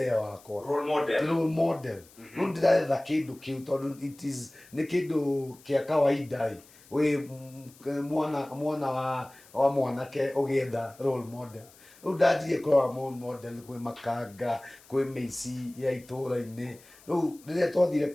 wakwa role model rĩu ndĩretha kĩndũ kĩu tondũ nĩ kĩndũ kĩa kawaida wĩ mwana wa mwanake ũgĩetha role model rĩu ndanjirie kũrora role model kwĩ Makanga kwĩ mĩici ya itũũra-inĩ rĩu rĩrĩa twathire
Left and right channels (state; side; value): noise; left; hiss, 25 dB below the sound